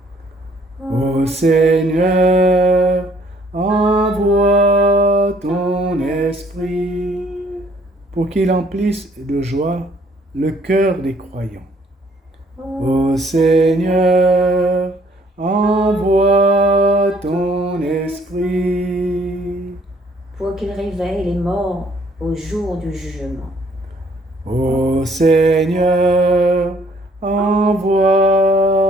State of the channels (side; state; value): both; normal; correlation 0.62